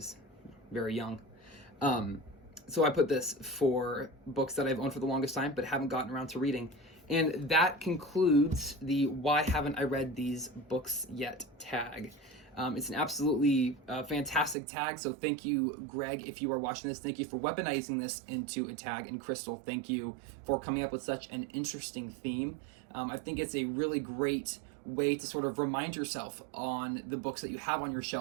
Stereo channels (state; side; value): drops out; left; at 14.6 s